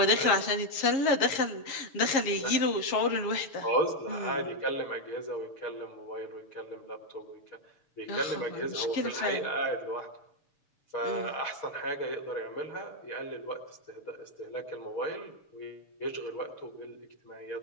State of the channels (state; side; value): late; right; 6.9 ms